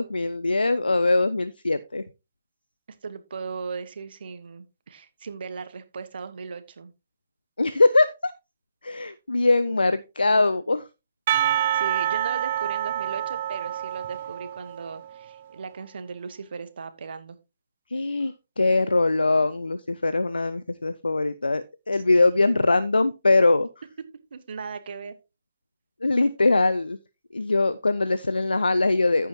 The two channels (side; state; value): both; inverted; correlation -0.90